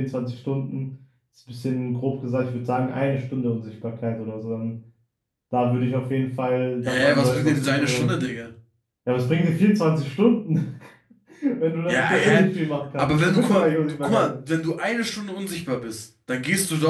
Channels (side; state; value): both; identical; correlation 1.00